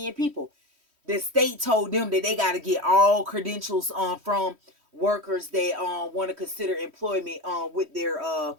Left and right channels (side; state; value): left; late; 3.1 ms